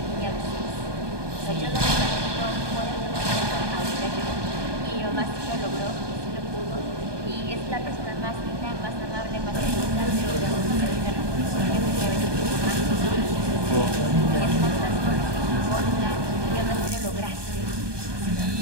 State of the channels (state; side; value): late; left; 1.2 ms